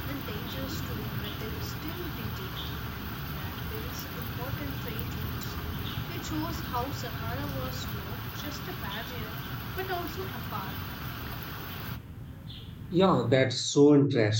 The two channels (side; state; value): both; identical; correlation 1.00